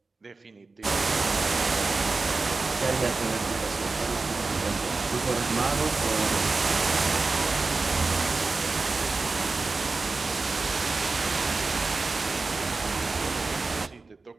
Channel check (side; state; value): left; quieter; 3.8 dB